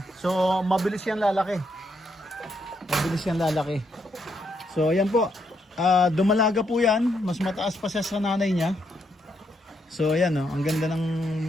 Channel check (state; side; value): normal; both; correlation 0.77